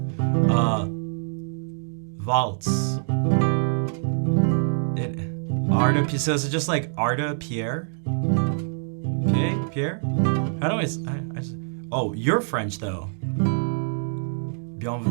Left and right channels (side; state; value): left; silent; digital silence